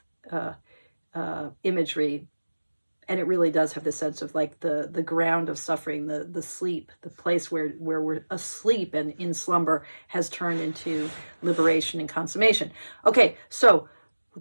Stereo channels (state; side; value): inverted; both; correlation -1.00